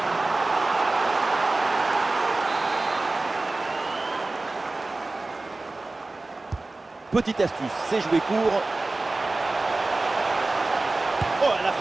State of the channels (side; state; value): left; quieter; 3.2 dB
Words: Petite astuce, c'est jouer court. Oh, la